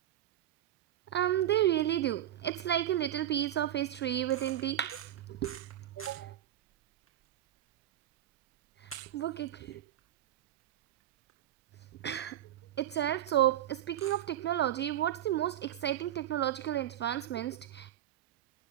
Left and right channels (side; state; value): left; quieter; 11.9 dB